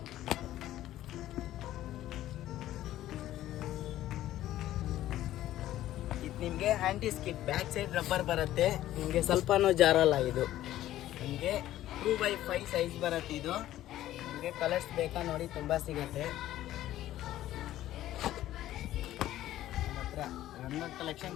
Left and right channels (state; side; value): quieter; right; 13.8 dB